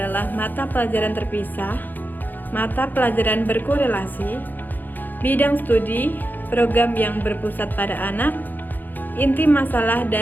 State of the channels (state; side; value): late; right; 0.087 ms